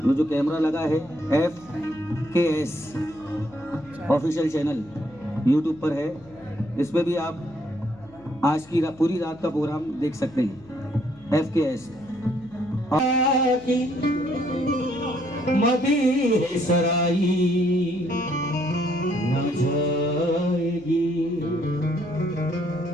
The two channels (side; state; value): left; noise; hum, 24 dB below the sound